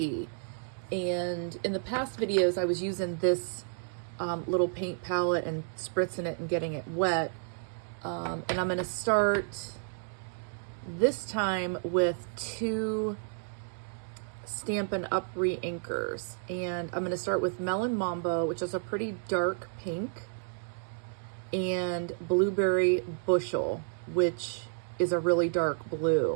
And in the past videos, I was using this little paint palette and spritzing it and getting it wet. And I'm going to start this time with 2 Stampin' Up! Re-inkers. And I'm going to start with Melon Mambo, which is a pretty dark pink, and Blueberry Bushel, which is a really dark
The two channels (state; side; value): silent; left; 57 dB below the other